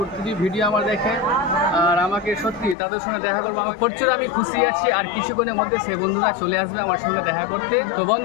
ভিডিও আমার দেখে। আর আমাকে সত্যি তাদের সঙ্গে দেখা করবো আমার প্রচুর আমি খুশি আছি। আর কিছুক্ষণের মধ্যে সে বন্ধুরা চলে আসবে আমার সঙ্গে দেখা করতে। তো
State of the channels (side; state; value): right; drops out; at 2.8 s